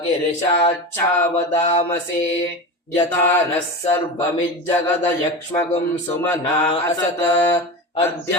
ಗಿರಿಶಾಚ್ಛಾವದಾಮಸಿ. ಯಥಾ ನಃ ಸರ್ವಮಿಜ್ಜಗದ ಯಕ್ಷ್ಮಗುಂ ಸುಮನಾ ಅಸತ. ಅದ್ಯ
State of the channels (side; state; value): both; normal; correlation 0.24